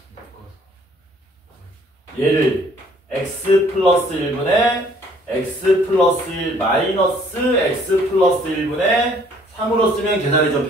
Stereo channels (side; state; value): both; normal; correlation 0.60